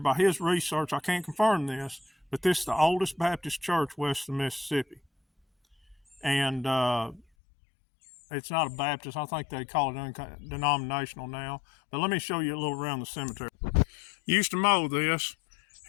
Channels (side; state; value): right; drops out; at 7.2 s